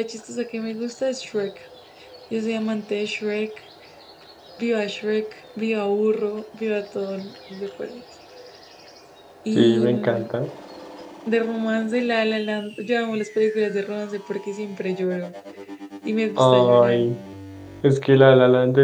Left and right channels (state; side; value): identical; both; correlation 1.00